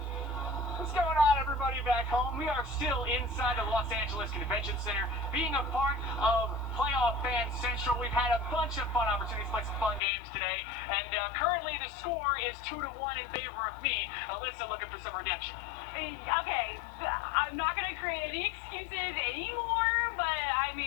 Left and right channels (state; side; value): drops out; right; at 10.0 s